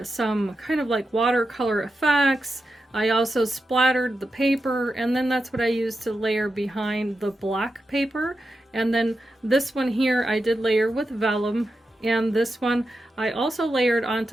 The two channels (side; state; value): both; normal; correlation 0.89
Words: some kind of like watercolor effects. I also splattered the paper, and then that's what I used to layer behind the black paper. And then this one here I did layer with vellum, and this one I also layered